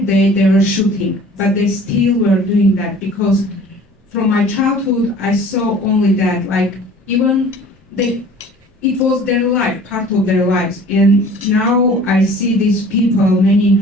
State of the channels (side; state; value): both; normal; correlation 0.47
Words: day they were shooting, but they still were doing that, because from my childhood I saw only that, like even it was their life, part of their lives. And now I see these people, many